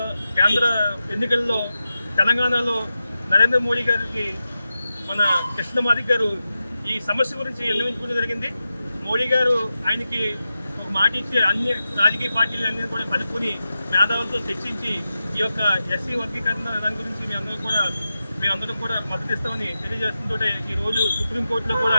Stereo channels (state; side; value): inverted; both; correlation -0.91